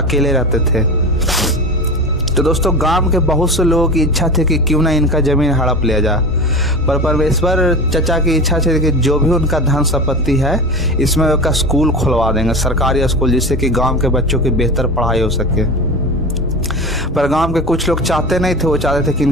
अकेले रहते थे। तो दोस्तों गांव के बहुत से लोगों की इच्छा थी कि क्यों ना इनका ज़मीन हड़प लिया जाए, पर परमेश्वर चचा की इच्छा थी कि जो भी उनका धन संपत्ति है इसमें उसका स्कूल खुलवा देंगे, सरकारी स्कूल, जिससे कि गांव के बच्चों की बेहतर पढ़ाई हो सके। पर गांव के कुछ लोग चाहते नहीं थे। वो चाहते थे कि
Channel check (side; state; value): both; normal; correlation 0.29